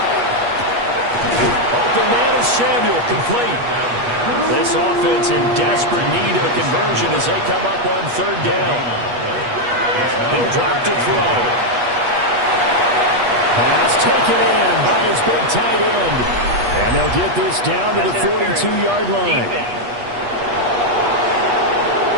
Open man is Samuel, complete. This offense in desperate need of a conversion as they come up on third down. They'll drop to throw. Pass taken in by his big tight end. And they'll get this down to the 42-yard line.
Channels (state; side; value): late; left; 8.3 ms